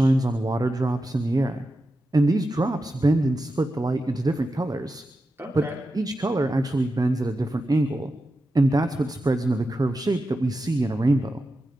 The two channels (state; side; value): normal; both; correlation 0.90